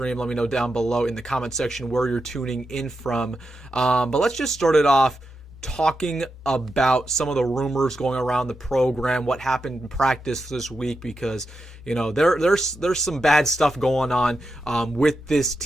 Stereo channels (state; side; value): normal; both; correlation 0.87